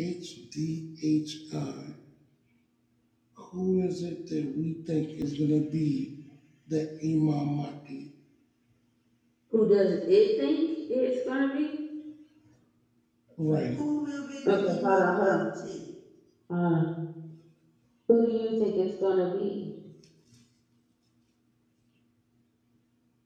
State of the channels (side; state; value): both; identical; correlation 1.00